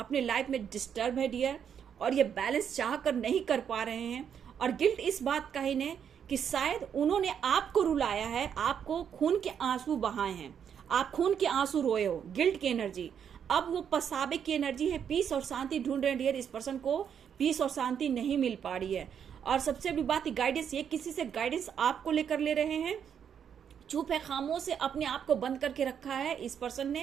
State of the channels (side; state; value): left; quieter; 8.1 dB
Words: लाइफ में डिस्टर्ब है डियर, और ये बैलेंस चाह कर नहीं कर पा रहे हैं। और गिल्ट इस बात का ही ने कि शायद उन्होंने आपको रुलाया है, आपको खून के आंसू बहाए हैं, आप खून के आंसू रोए हो, गिल्ट की एनर्जी। अब वो पछतावे की एनर्जी है, पीस और शांति ढूंढ रहे हैं डियर। इस पर्सन को पीस और शांति नहीं मिल पा रही है। और सबसे बड़ी बात, गाइडेंस, ये किसी से गाइडेंस आपको लेकर ले रहे हैं। चुप है, खामोश से अपने आप को बंद करके रखा है इस पर्सन